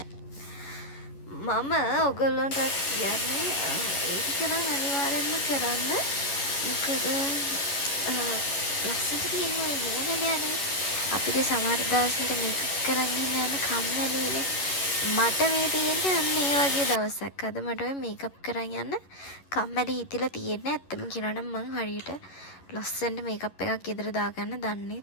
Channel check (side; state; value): right; late; 11 ms